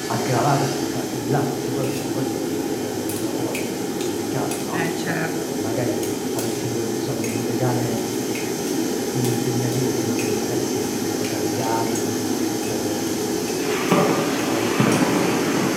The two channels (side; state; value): both; identical; correlation 1.00